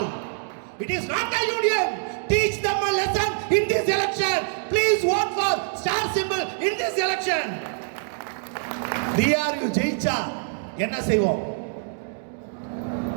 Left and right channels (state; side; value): silent; left; digital silence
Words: It is not a union. teach them a lesson in this election. Please vote for star symbol in this election. DRU ஜெயிச்சா என்ன செய்வோம்?